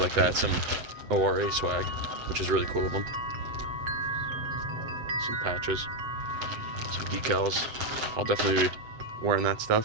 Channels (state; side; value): late; left; 7.9 ms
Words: that, some ORA swag, which is really cool of them. Some patches, some decals. I'll definitely be wearing that